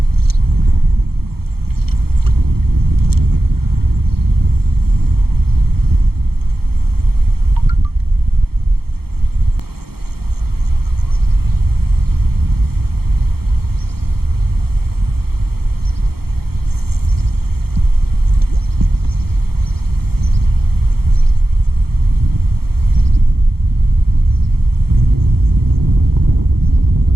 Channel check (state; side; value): late; left; 0.95 ms